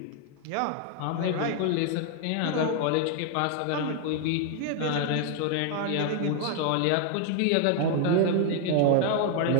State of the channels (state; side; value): different; both; correlation 0.00